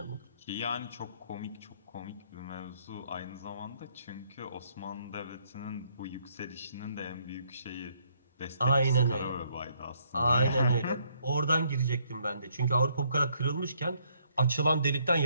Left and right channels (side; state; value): both; inverted; correlation -0.69